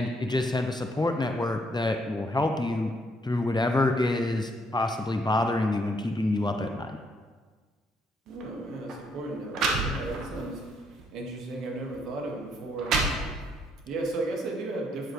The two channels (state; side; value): normal; both; correlation 0.72